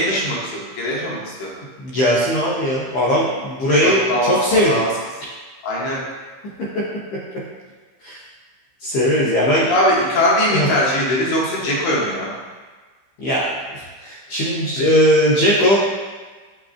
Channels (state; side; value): late; right; 15 ms